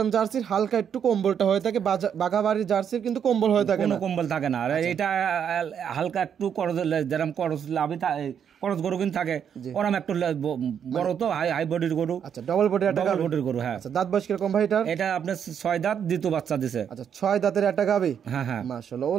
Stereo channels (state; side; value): quieter; left; 8.1 dB